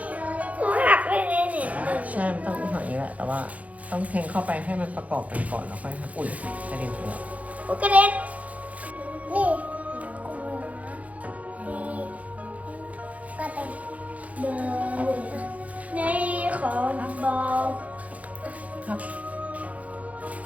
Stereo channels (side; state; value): left; late; 0.069 ms